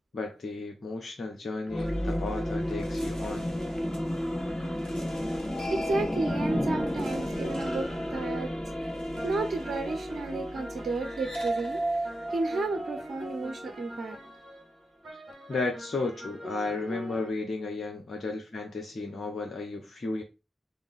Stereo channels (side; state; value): both; normal; correlation 0.88